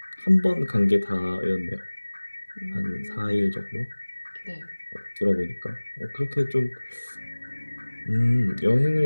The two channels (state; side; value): inverted; both; correlation -1.00